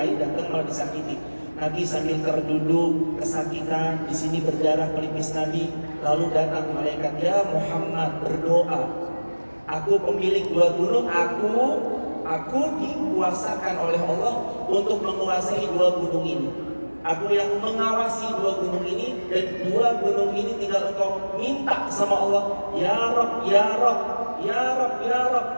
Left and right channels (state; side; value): inverted; both; correlation -1.00